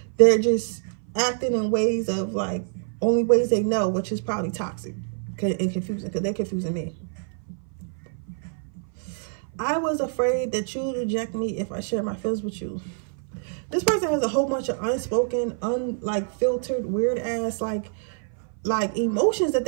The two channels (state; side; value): silent; left; 58 dB below the other